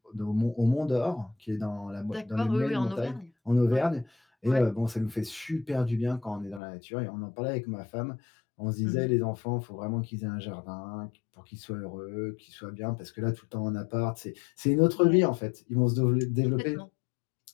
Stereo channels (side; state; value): right; drops out; at 6.6 s